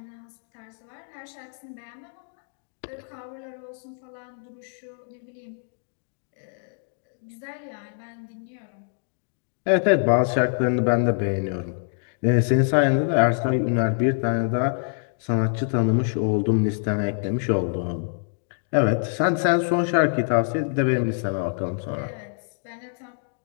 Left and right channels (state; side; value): silent; right; digital silence